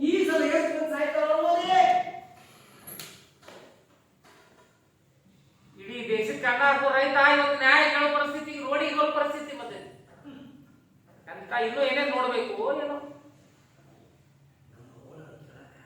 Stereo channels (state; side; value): identical; both; correlation 1.00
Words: ಈ ಸಲ ಎಷ್ಟು ಮಂದಿ ಸಾಯ್ತಾರ ಅನ್ನೋದೇ. ಇಡೀ ದೇಶಕ್ಕೆ ಅನ್ನ ಹಾಕೋ ರೈತ ಇವತ್ತು ನ್ಯಾಯ ಕೇಳೋ ಪರಿಸ್ಥಿತಿ, ರೋಡಿಗೆ ಬರೋ ಪರಿಸ್ಥಿತಿ ಮತ್ತೆ ಅಂತ ಇನ್ನೂ ಏನೇನ್ ನೋಡ್ಬೇಕು ಏನೋ.